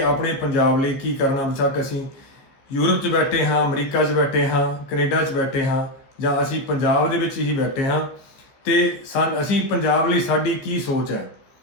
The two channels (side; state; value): right; late; 15 ms